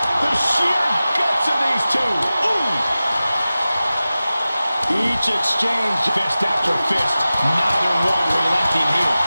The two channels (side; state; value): both; inverted; correlation -0.96